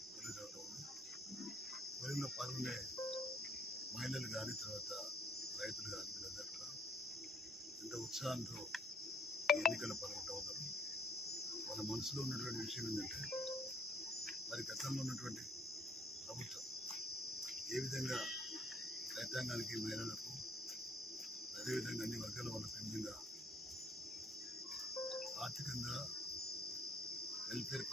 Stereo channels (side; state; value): both; normal; correlation 0.62